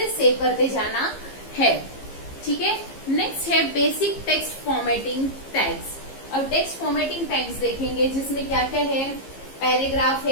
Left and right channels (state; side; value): late; right; 15 ms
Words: सेव करते जाना है. ठीक है. नेक्स्ट है बेसिक टेक्स्ट फॉर्मेटिंग टैग्स. अब टेक्स्ट फॉर्मेटिंग टैग्स देखेंगे जिसमें क्या क्या है. पैराग्राफ